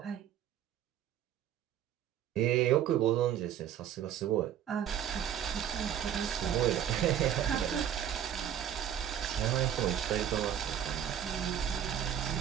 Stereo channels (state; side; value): quieter; left; 10.0 dB